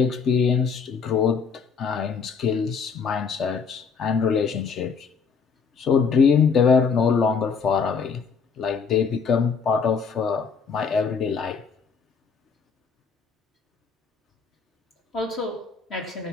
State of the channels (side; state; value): right; quieter; 5.7 dB